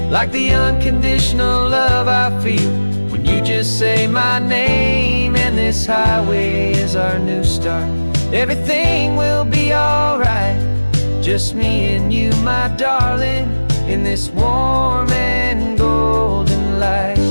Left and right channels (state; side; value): inverted; both; correlation -1.00